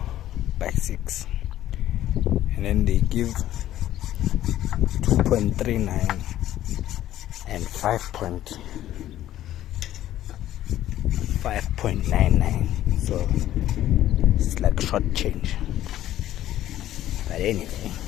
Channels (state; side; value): quieter; right; 13.0 dB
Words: by 6, and then they give 2.39 and 5.99, so it's like short change. But anyway,